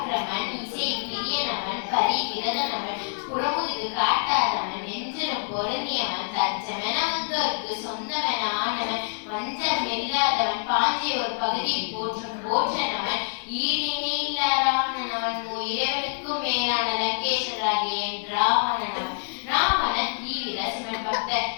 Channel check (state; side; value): silent; right; digital silence